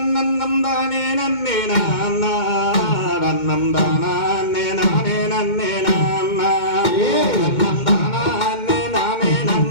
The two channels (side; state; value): right; late; 2.1 ms